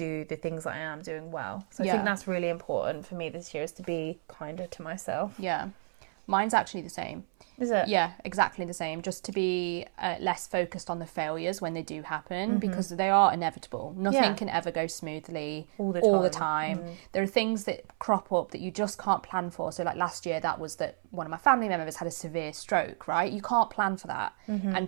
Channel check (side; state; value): left; silent; 57 dB below the other